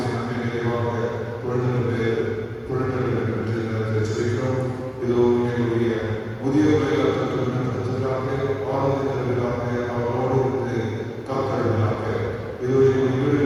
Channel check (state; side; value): identical; both; correlation 1.00